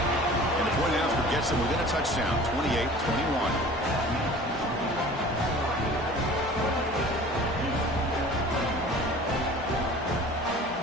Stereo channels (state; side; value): normal; both; correlation 0.44